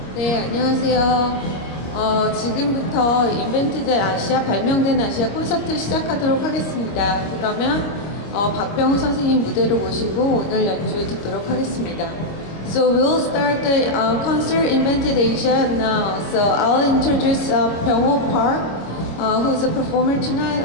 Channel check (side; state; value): right; late; 25 ms